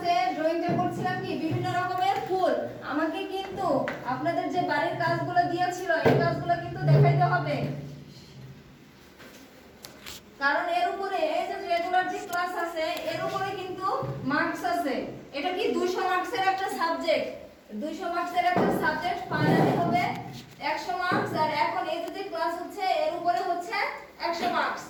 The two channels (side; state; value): both; identical; correlation 1.00